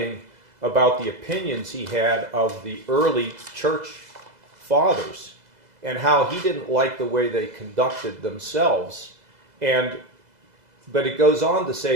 about the opinions he had of the early church fathers, and how he didn't like the way they conducted themselves. But it goes on to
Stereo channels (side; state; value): left; late; 2.0 ms